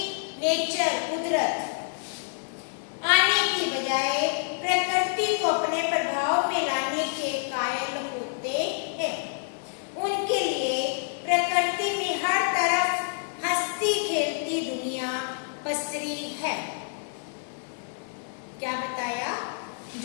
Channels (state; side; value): silent; right; digital silence